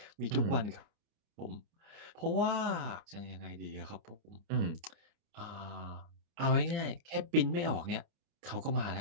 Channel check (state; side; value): late; left; 29 ms